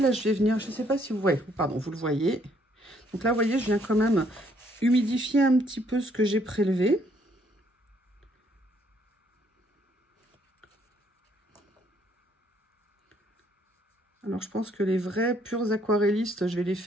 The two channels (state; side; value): normal; both; correlation 0.67